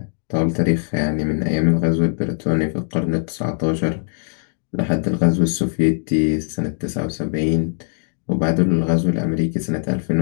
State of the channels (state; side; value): silent; right; digital silence